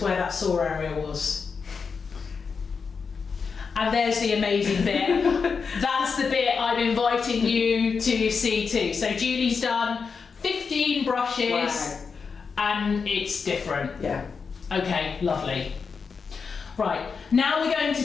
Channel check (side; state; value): right; quieter; 5.4 dB